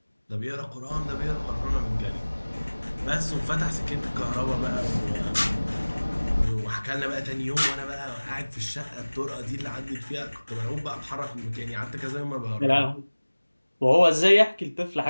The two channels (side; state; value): both; inverted; correlation -1.00